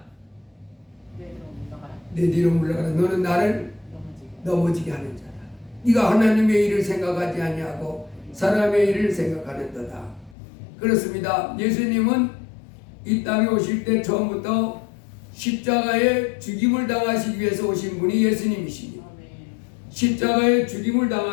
내 뒤로 물러가라. 너는 나를 넘어지게 하는 자다. 네가 하나님의 일을 생각하지 아니하고 사람의 일을 생각하는도다. 그렇습니다. 예수님은 이 땅에 오실 때 처음부터 십자가에 죽임을 당하시기 위해서 오신 분이 예수님이십니다. 십자가에 죽임을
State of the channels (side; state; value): right; drops out; at 10.4 s